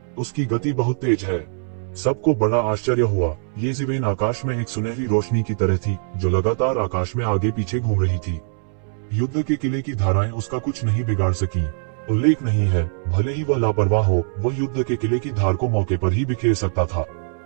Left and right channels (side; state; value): left; silent; 64 dB below the other